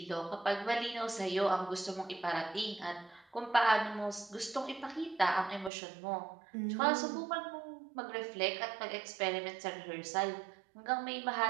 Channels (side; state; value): left; drops out; at 5.7 s